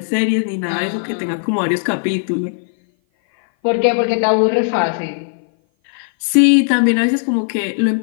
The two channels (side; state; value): right; silent; 57 dB below the other